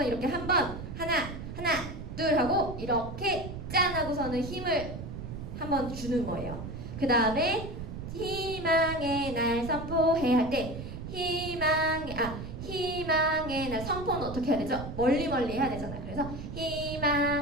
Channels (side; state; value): right; noise; rumble, 8 dB below the sound